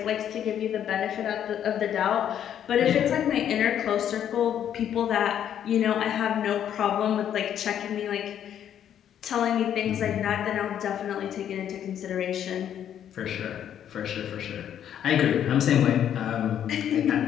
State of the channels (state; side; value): quieter; right; 9.8 dB